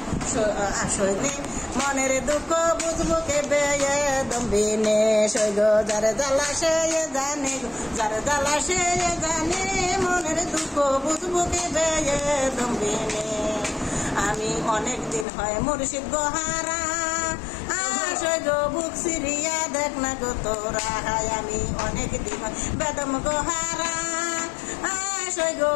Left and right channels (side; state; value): right; drops out; at 15.2 s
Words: আসলে মনের দুঃখ বুঝবো কে বেদম বিনে সই গো যার জ্বালা সে জানে গো যার জ্বালা সে জানে মনের দুঃখ বুঝবো কে বেদম বিনে আমি অনেক দিন হয় মুর্শিদ গোহারা সই গো বুক সিরিয়া দেখ না গো তোরা আমি অনেক দিন হয় বেদম গোহারা সই গো